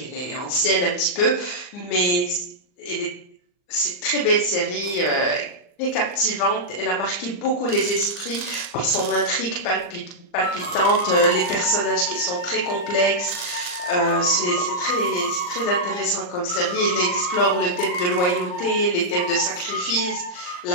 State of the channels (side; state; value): right; late; 39 ms